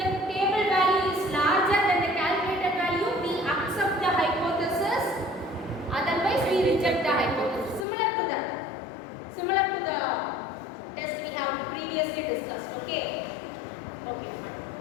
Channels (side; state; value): right; drops out; at 7.9 s